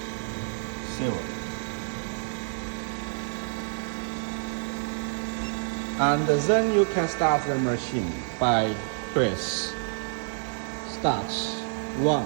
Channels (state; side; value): silent; left; 59 dB below the other